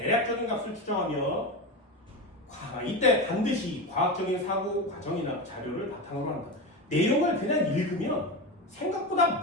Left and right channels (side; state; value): both; normal; correlation 0.21